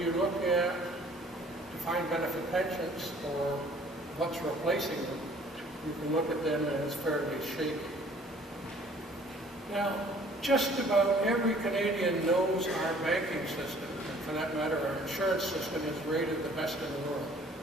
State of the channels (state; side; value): normal; both; correlation 0.55